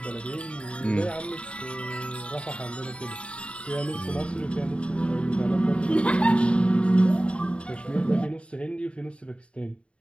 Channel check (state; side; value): late; right; 0.059 ms